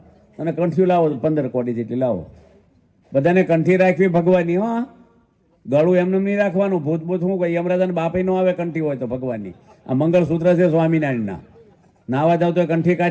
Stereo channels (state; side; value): identical; both; correlation 1.00